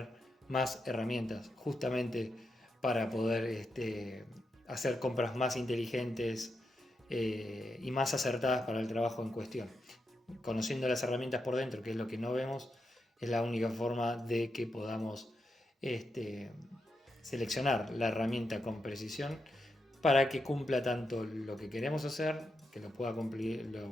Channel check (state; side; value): normal; both; correlation 0.85